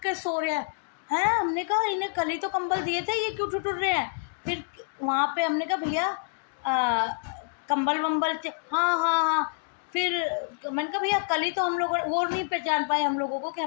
के सो रहे हैं। हैं? हमने कहा इन्हें कल ही तो कंबल दिए थे, ये क्यों ठिठुर रहे हैं? फिर वहाँ पे हमने कहा भैया कंबल-वंबल हाँ, हाँ, हाँ। फिर मैंने कहा भैया कल ही तो हम लोगों, वो नहीं पहचान पाए हम लोगों को कि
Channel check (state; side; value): silent; right; digital silence